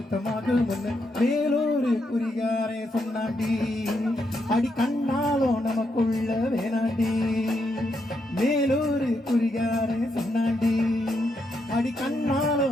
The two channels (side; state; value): both; normal; correlation 0.80